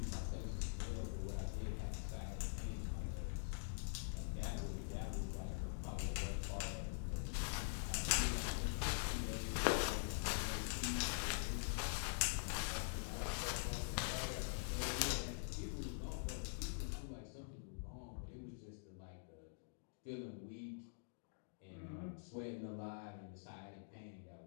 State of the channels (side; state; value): right; silent; digital silence